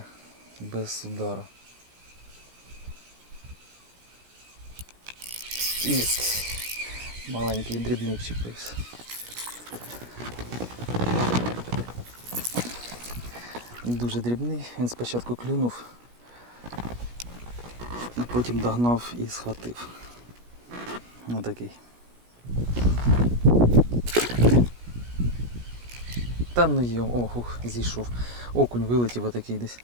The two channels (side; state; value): left; late; 17 ms